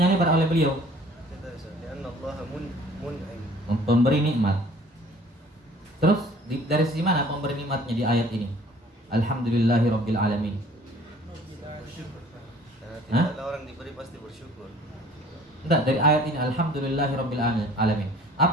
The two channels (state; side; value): normal; both; correlation 0.52